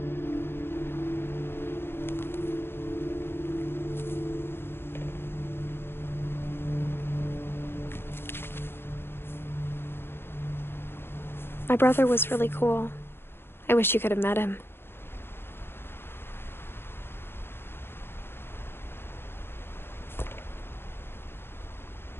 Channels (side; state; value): right; late; 0.11 ms